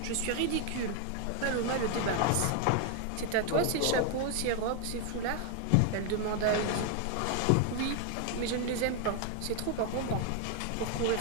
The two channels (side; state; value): both; different; correlation 0.01